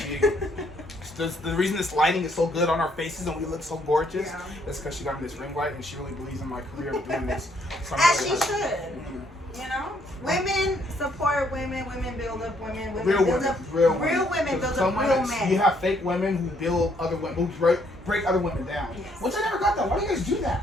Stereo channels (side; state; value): both; normal; correlation 0.69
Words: The reason this lighting is so good on our faces and we look so gorgeous Yeah. is because she got me this ring light and she really believes in my career of doing this. So I'm As really she happy. should. You know, women support women. Women build up women. Women Real build women, up real women build Some up real women, men. you have fake women who build other women, who break other women down. Yes. Which I never got that. Why do you guys do